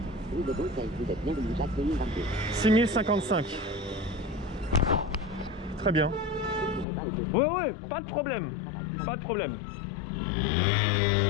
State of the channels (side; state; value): right; drops out; at 6.9 s